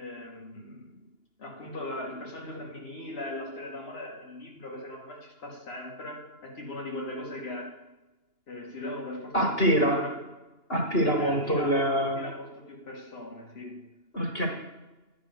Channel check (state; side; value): late; right; 2.9 ms